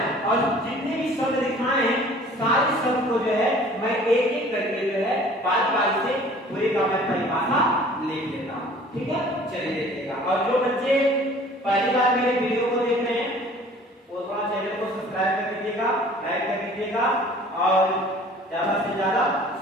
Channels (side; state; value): both; normal; correlation 0.50